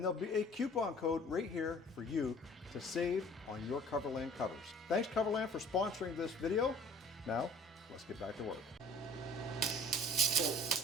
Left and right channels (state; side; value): normal; both; correlation 0.50